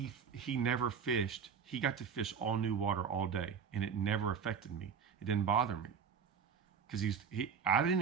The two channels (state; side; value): quieter; left; 6.8 dB